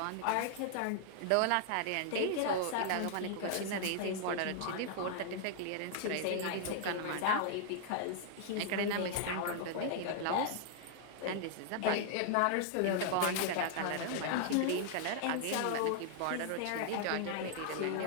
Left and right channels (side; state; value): both; different; correlation -0.01